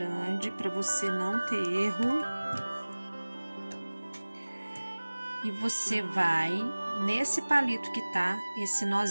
para você não ter erro. E você vai nesse palito que tá esse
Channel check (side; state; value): both; inverted; correlation -1.00